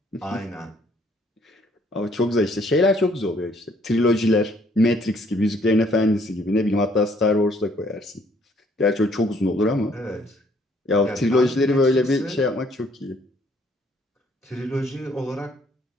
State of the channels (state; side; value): normal; both; correlation 0.64